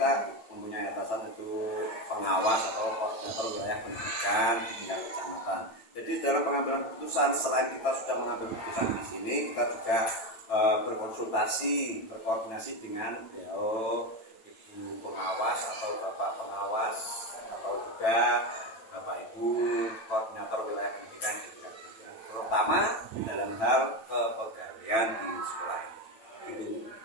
mempunyai atasan itu pengawas atau koordinator wilayah pendidikan di tingkat kecamatan. Jadi dalam pengambilan keputusan, selain kita sudah mengambil keputusan di sini, kita juga berkonsultasi, berkoordinasi dengan ibu pengawas atau bapak pengawas atau juga bapak ibu koordinator wilayah pendidikan di tingkat pendidikan, terutama dalam hal kepegawaian di sekolah ini. Gitu.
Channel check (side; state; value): right; late; 9.0 ms